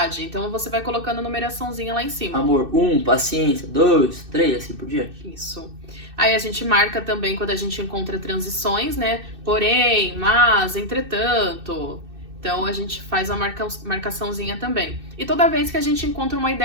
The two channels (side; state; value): left; late; 2.6 ms